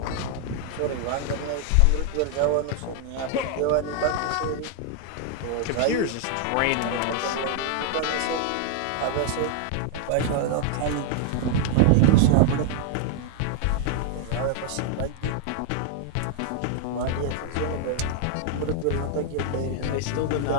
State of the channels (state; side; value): different; both; correlation 0.00